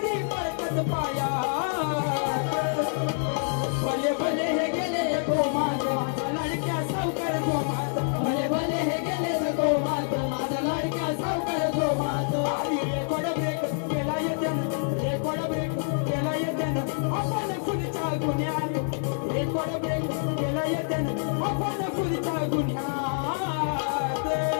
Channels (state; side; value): silent; right; 60 dB below the other